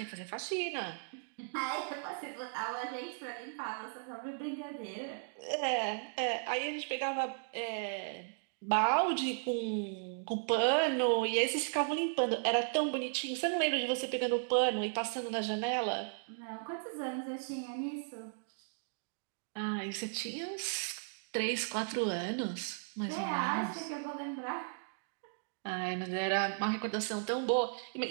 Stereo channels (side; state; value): left; silent; digital silence